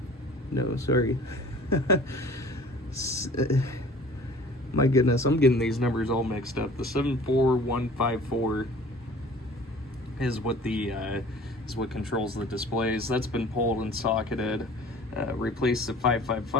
No, sorry. My goodness, I'm getting these numbers all mixed up. The 74154 is what controls the displays. That's been pulled and socketed. Replaced the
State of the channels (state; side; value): normal; both; correlation 0.46